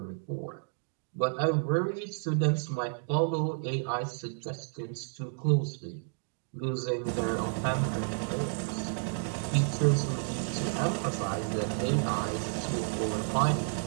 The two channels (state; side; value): silent; left; digital silence